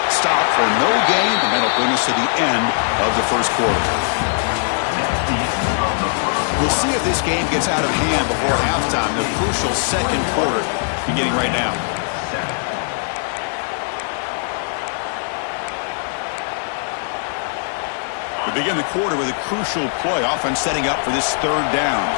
Stop for no gain, and that'll bring us to the end of the first quarter. We'll see if this game gets out of hand before halftime, the crucial second quarter beginning right now. We begin the quarter with a crucial play, offense setting up for this third down.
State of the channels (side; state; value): right; silent; digital silence